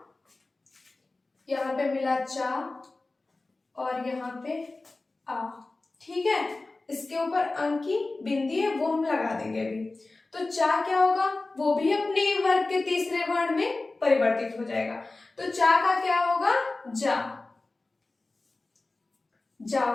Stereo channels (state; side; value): quieter; right; 3.3 dB